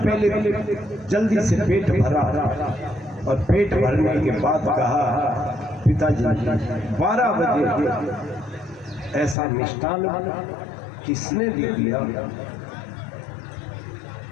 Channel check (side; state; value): right; drops out; at 9.3 s